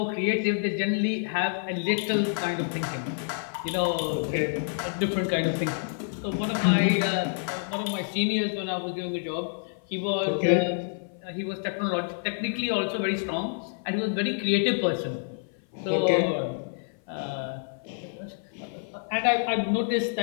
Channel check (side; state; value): right; silent; 56 dB below the other